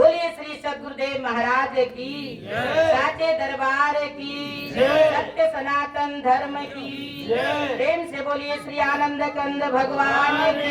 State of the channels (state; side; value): identical; both; correlation 1.00